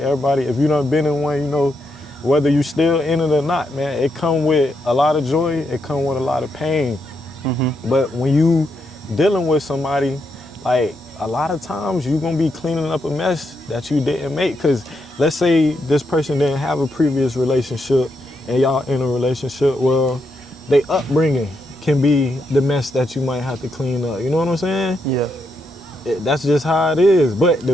if you done been in one, you know, whether you still in it or not, man, it come with a lot of joy, it come with a lot of pain. But when you dealing with somebody, like, a lot of times you're gonna be cleaning up a mess that you didn't make. Because let's say this person didn't have a previous relationship and y'all in a relationship, well, they upbringing can be the mess that you might have to clean up. You know what I'm saying? That's just how it is. But the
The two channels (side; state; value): both; normal; correlation 0.81